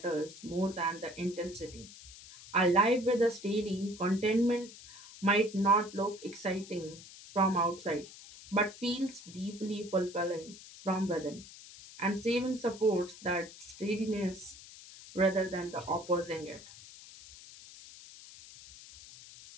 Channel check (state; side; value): noise; left; hiss, 17 dB below the sound